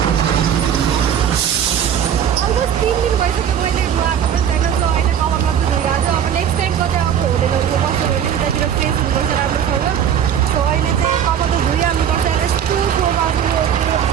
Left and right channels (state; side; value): quieter; left; 8.9 dB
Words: अलमोस्ट 3 दिन भइसक्यो मैले आएको पनि छैन। सो अहिले कभर मात्रै धोइहाल्छु। अब नेक्स्ट टाइम कतै अब होटेलहरूको बस्यो भने उतातिर फ्रेस हुनुपर्छ राम्रोसँग। सो अहिले चाहिँ कभर त धोइहाल्नुपर्छ। यस्तो